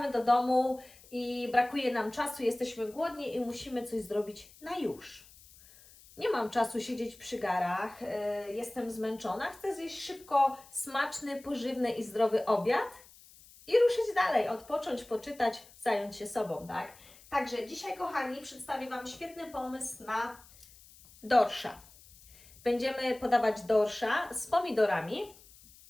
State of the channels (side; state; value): left; noise; hiss, 23 dB below the sound